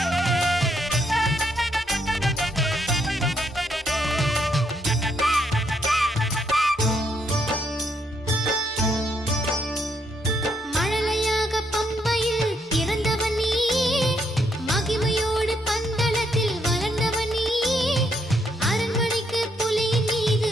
மழலையாக பம்பையில் பிறந்தவன் நீயே, மகிமையோடு பந்தளத்தில் வளர்ந்தவன் நீயே. அரண்மனைக்கு புலியின் மீது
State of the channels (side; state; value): both; normal; correlation 0.74